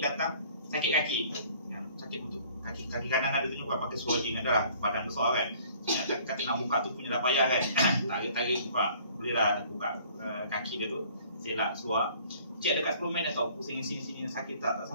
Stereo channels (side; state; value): both; inverted; correlation -0.55